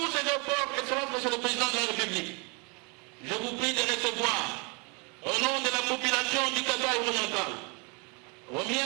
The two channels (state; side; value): quieter; left; 32.2 dB